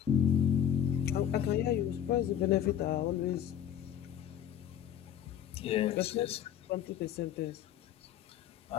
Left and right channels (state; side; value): quieter; right; 10.0 dB